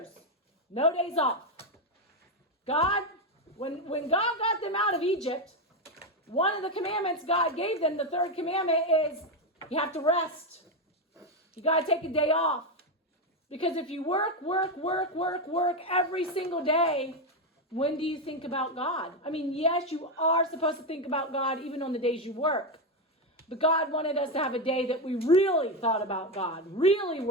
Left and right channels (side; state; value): both; normal; correlation 0.09